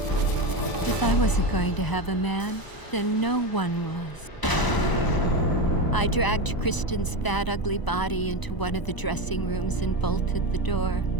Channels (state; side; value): late; right; 1.0 ms